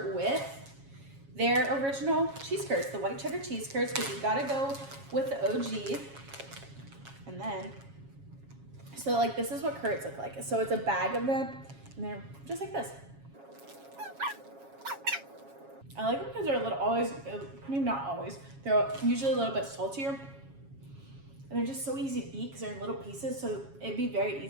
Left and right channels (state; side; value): late; left; 7.3 ms